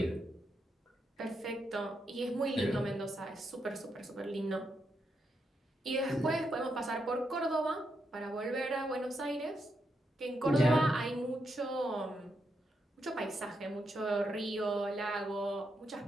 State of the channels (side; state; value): both; normal; correlation 0.82